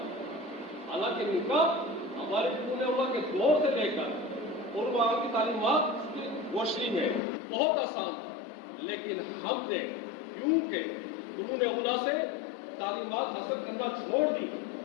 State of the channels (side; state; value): right; drops out; at 7.2 s